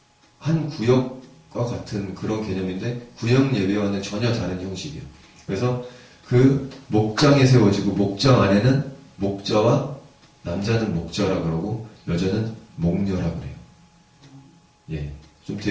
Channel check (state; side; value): identical; both; correlation 1.00